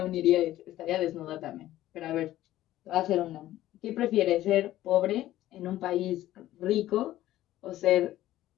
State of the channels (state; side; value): quieter; right; 14.4 dB